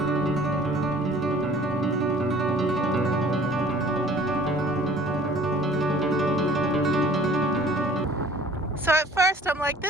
So at first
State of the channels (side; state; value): both; normal; correlation 0.51